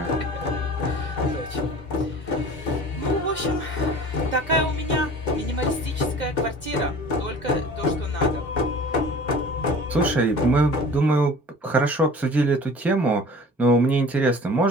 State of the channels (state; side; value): normal; both; correlation 0.43